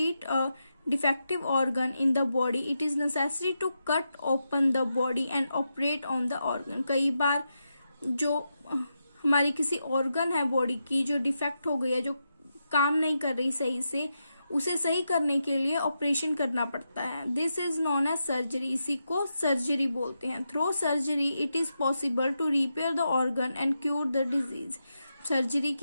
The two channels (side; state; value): both; inverted; correlation -0.86